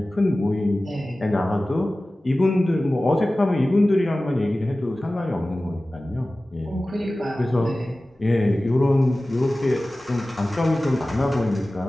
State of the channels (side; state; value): both; normal; correlation 0.97